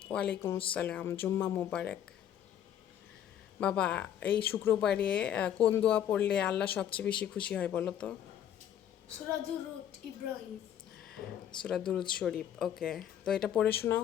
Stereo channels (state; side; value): quieter; right; 10.2 dB